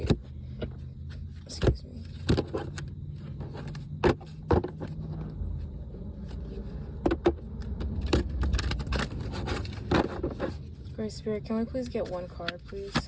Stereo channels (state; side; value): identical; both; correlation 1.00